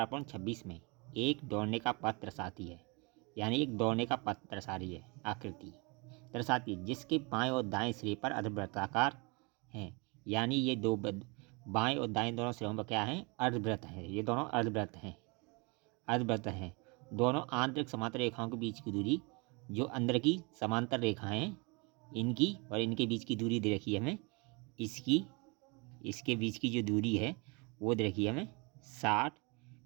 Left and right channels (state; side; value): quieter; left; 29.5 dB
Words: में एक दौड़ने का पथ दर्शाती है। यानी एक दौड़ने का पथ दर्शा रही है, आकृति दर्शाती है जिसके बाएं और दाएं सिरे पर अर्धवृत्ताकार हैं। यानी ये बाएं और दाएं दोनों सिरों पर क्या है, अर्धवृत्त है। ये दोनों अर्धवृत्त हैं। दोनों आंतरिक समांतर रेखाओं के बीच की दूरी, जो अंदर की समांतर रेखाएं इनकी और इनके बीच की दूरी दे रखी है हमें, इसके बीच की जो दूरी है वो दे रखी है हमें 60